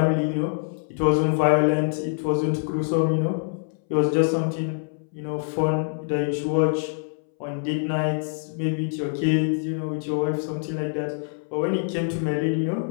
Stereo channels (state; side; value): silent; right; 62 dB below the other